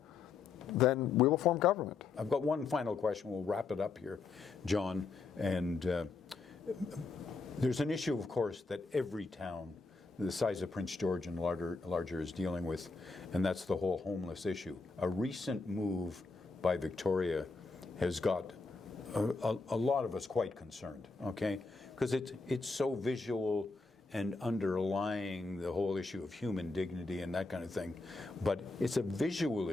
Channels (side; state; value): right; quieter; 4.1 dB